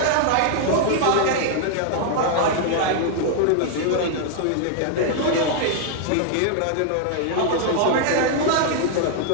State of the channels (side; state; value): both; different; correlation 0.00